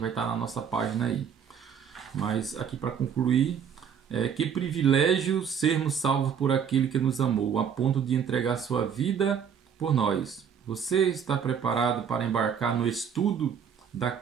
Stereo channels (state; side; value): quieter; left; 7.6 dB